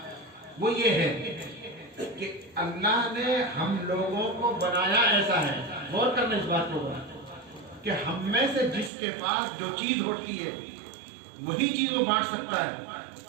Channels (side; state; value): left; drops out; at 8.9 s